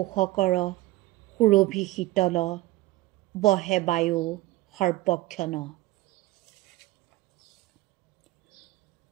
সুৰভি শীতল, বহে বায়ু সৰ্বক্ষণ।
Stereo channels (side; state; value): left; quieter; 18.4 dB